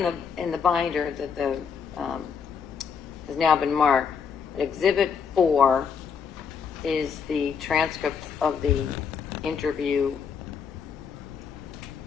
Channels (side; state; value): right; quieter; 6.6 dB